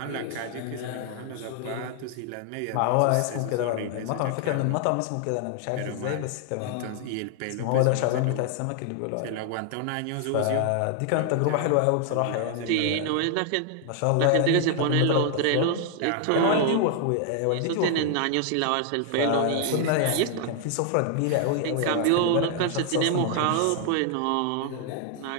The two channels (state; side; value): different; both; correlation 0.00